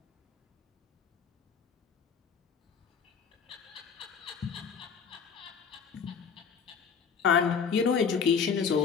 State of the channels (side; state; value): right; quieter; 6.4 dB